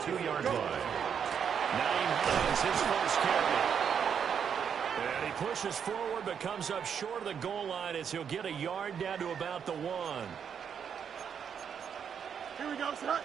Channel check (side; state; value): left; quieter; 7.6 dB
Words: 2-yard line. 9 is his first carry. And he pushes forward but comes up short of the goal line as he'll get a yard down to about the 1. Here we go, set.